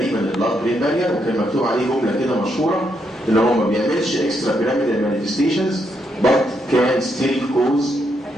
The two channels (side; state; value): both; normal; correlation 0.78